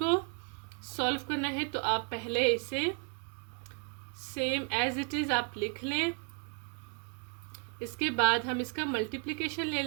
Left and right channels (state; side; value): quieter; left; 36.8 dB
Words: सॉल्व करना है, तो आप पहले इसे सेम एज इट इज़ आप लिख लें। इसके बाद हम इसका मल्टीप्लिकेशन ले